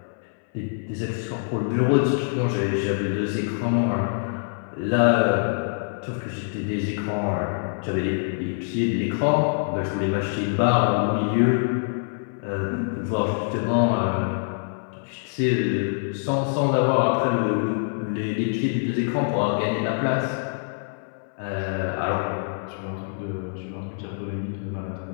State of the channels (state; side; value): silent; right; 62 dB below the other